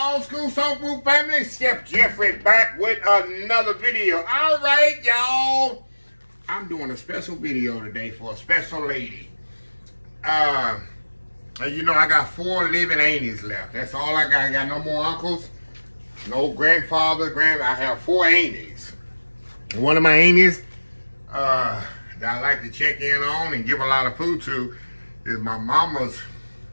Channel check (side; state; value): both; inverted; correlation -1.00